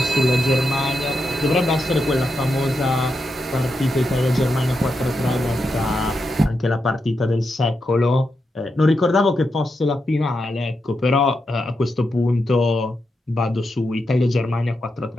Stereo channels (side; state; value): both; normal; correlation 0.86